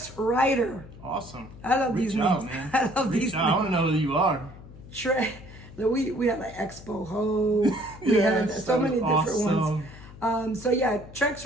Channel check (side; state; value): left; noise; hum, 18 dB below the sound